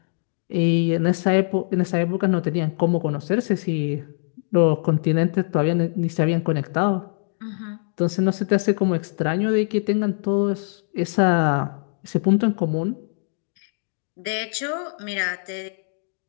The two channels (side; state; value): right; silent; 63 dB below the other